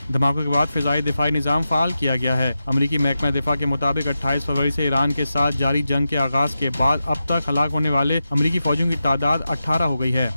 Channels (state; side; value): inverted; both; correlation -0.90